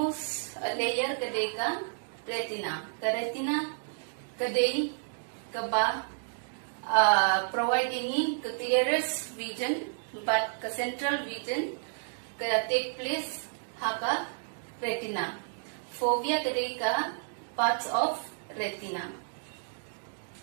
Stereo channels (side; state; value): left; silent; digital silence